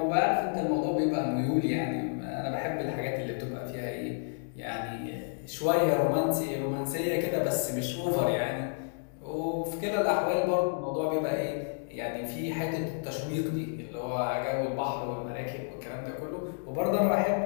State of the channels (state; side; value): silent; right; digital silence